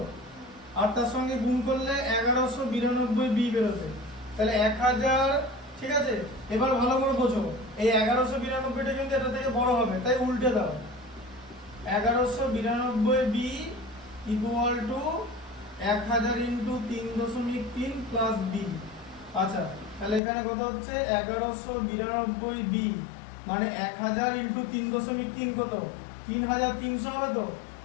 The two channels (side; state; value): right; drops out; at 20.2 s